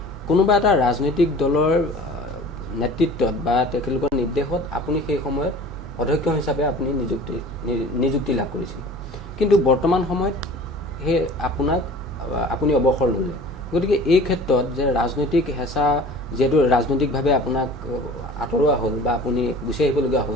কোনোবা এটা ৰাজনৈতিক দলৰ নেতৃত্বত বা তেখেতলোকৰ নিৰ্দেশত আপুনি সেই সময়ত অধ্যক্ষ হিচাপে আপুনি নিযুক্তি লাভ কৰিছিল। কিন্তু বৰ্তমান সময়ত আপুনি অৱসৰ ল'লে, গতিকে এই ক্ষেত্ৰত যে ৰাজনৈতিক হেঁচা যিহেতু ৰাজনৈতিকভাৱে আপোনাক আঁতৰোৱা হ'ল বা আপুনি গুচি আহিবলগীয়া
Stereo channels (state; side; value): normal; both; correlation 0.43